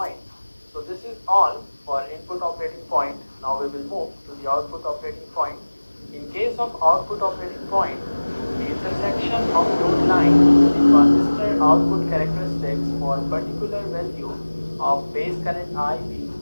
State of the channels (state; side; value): inverted; both; correlation -1.00